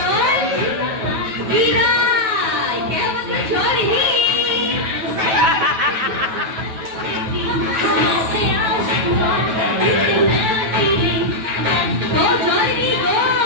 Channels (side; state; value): left; late; 9.2 ms